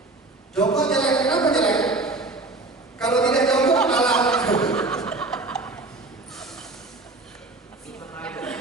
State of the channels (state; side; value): quieter; left; 3.2 dB